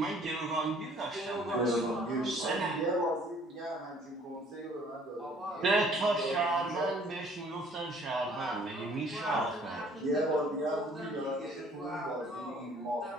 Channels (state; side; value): normal; both; correlation 0.57